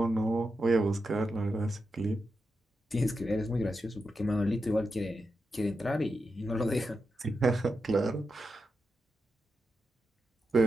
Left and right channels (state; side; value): normal; both; correlation 0.88